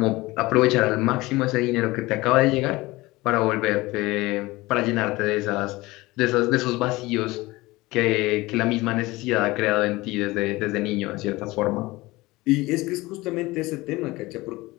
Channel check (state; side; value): quieter; right; 20.6 dB